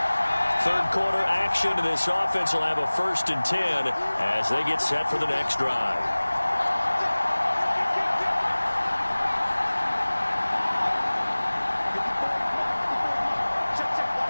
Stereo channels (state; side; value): inverted; both; correlation -1.00